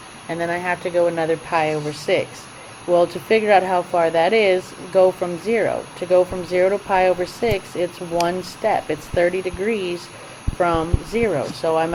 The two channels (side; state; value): both; identical; correlation 1.00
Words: and then I have to go another pi over 6. Well, to figure out how far that is, go from 0. To go from 0 to pi over 6, it's one step. It's 30 degrees from 0. So I'm